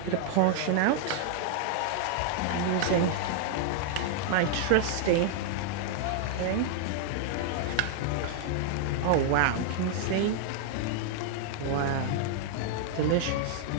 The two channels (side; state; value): both; different; correlation -0.01